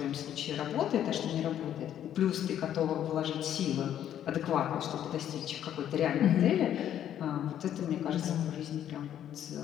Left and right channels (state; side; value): quieter; right; 10.6 dB